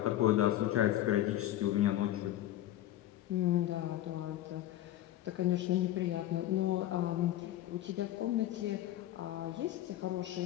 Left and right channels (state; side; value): quieter; right; 13.6 dB